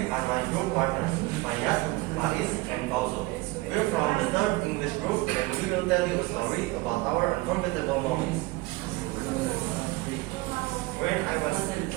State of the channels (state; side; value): quieter; left; 21.9 dB